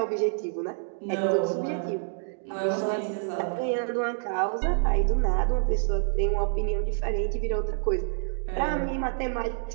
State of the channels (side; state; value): left; silent; digital silence